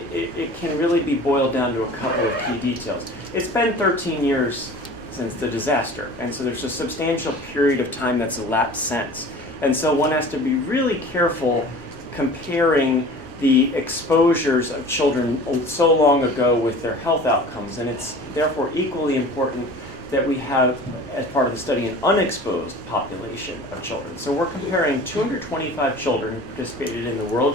it can really be boiled down to a couple of key details. It's been 13 years since the disaster, and so there's a substantial period of time that's elapsed since. And so one has to be really careful comparing the exposures of children so long ago with their health outcomes, and it's therefore equally important that we have, as part of the study, an unexposed population of children. So we're comparing 225 children who participated in the World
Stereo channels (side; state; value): both; normal; correlation 0.42